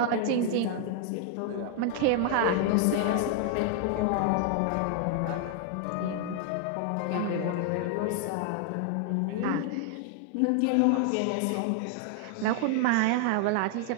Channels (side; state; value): both; different; correlation 0.00